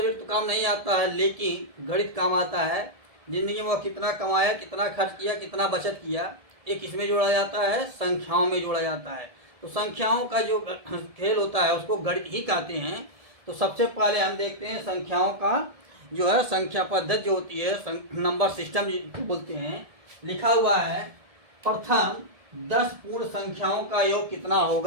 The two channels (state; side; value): late; left; 1.7 ms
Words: तो काम नहीं आता है, लेकिन गणित काम आता है। जिंदगी में वो कितना कमाया, कितना खर्च किया, कितना बचत किया, एक किसमें जोड़ा जाता है, संख्याओं में जोड़ा जाता है। तो संख्याओं का जो खेल होता है उसको गणित ही कहते हैं। तो सबसे पहले हम देखते हैं संख्याओं का जो है संख्या पद्धति जो होती है, नंबर सिस्टम जिसको बोलते हैं। लिखा हुआ है प्रथम 10 पूर्ण संख्याओं का योग कितना